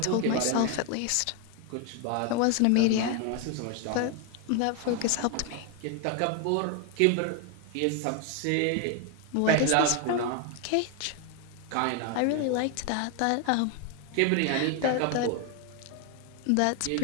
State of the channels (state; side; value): different; both; correlation 0.01